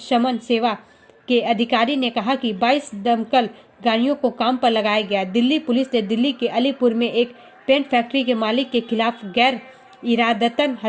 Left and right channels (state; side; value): identical; both; correlation 1.00